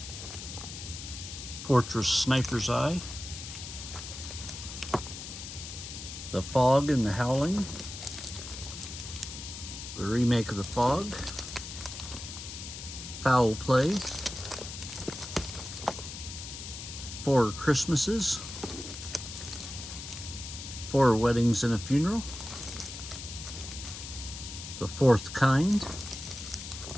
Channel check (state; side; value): noise; left; hiss, 10 dB below the sound